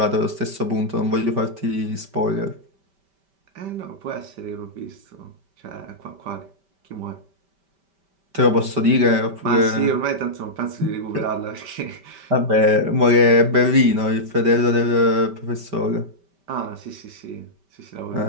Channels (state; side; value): late; left; 5.1 ms